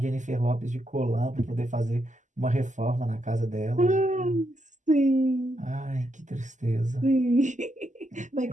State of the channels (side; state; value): left; late; 0.36 ms